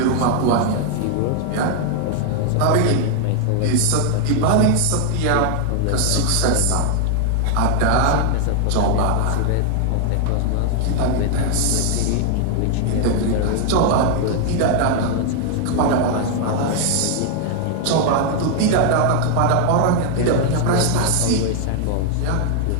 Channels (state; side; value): different; both; correlation 0.00